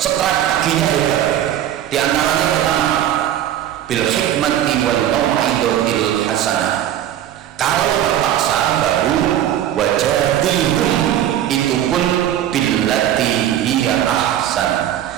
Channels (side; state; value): left; quieter; 11.4 dB